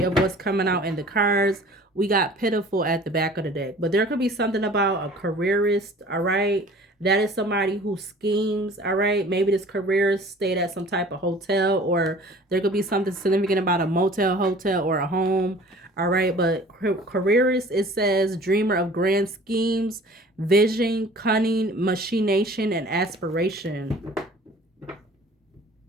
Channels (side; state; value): both; normal; correlation 0.47